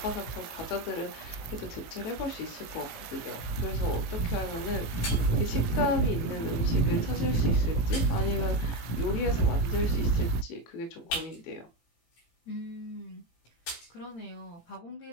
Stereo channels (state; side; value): late; right; 18 ms